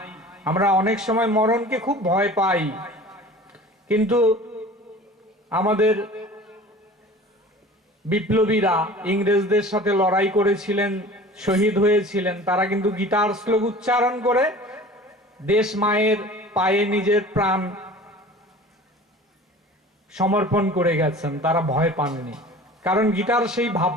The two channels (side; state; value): both; normal; correlation 0.41